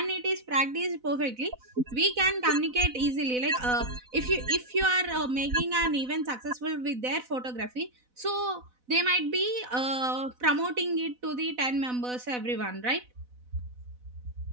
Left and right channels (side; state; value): left; late; 4.0 ms